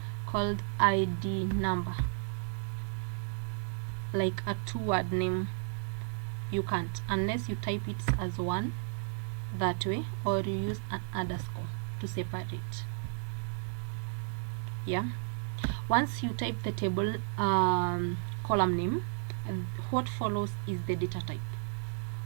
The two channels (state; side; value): silent; left; 56 dB below the other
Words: called ID number, like a two-word name. You can't, unless you type it as one that way, or you use an underscore to separate. Yeah, once you type the table column name, what follows is the data type.